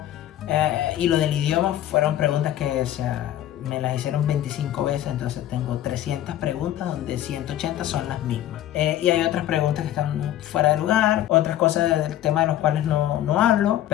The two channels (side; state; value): right; quieter; 12.6 dB